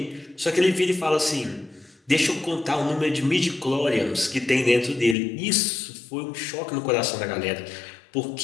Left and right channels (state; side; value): drops out; right; at 5.2 s